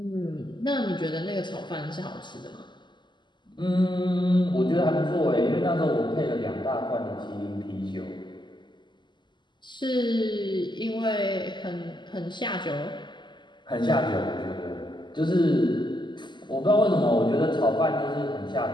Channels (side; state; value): right; late; 0.22 ms